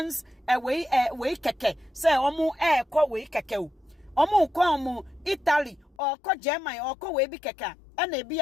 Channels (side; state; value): right; drops out; at 6.0 s